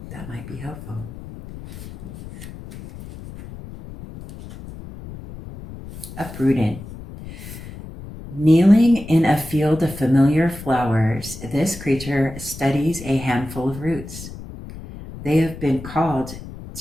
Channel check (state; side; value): noise; left; rumble, 14 dB below the sound